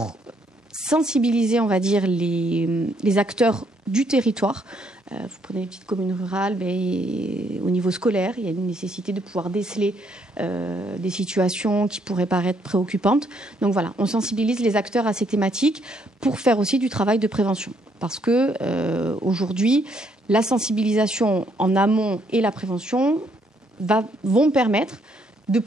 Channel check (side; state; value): both; normal; correlation 0.70